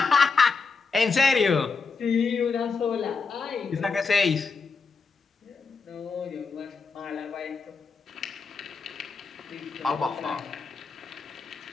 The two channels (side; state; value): right; quieter; 4.7 dB